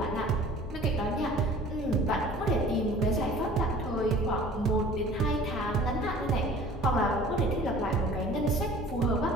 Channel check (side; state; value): both; normal; correlation 0.46